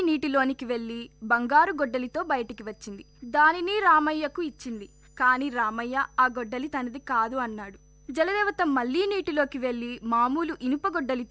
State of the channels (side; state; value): both; identical; correlation 1.00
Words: నీటిలోనికి వెళ్లి బంగారు గొడ్డలితో బయటికి వచ్చింది. దానిని రామయ్యకు ఇచ్చింది. కాని రామయ్య ఆ గొడ్డలి తనది కాదు అన్నాడు. జలదేవత మళ్లీ నీటిలోకి వెళ్లి మామూలు ఇనుప